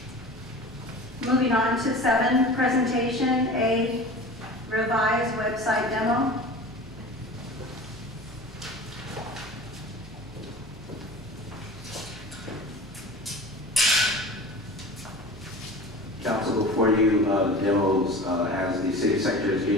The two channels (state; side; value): normal; both; correlation 0.37